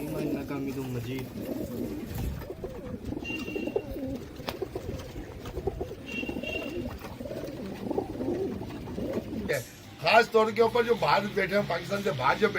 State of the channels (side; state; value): both; identical; correlation 1.00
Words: इन्नका हमीदुम मजीद। खास तौर के ऊपर जो बाहर बैठे हैं, पाकिस्तान से बाहर जो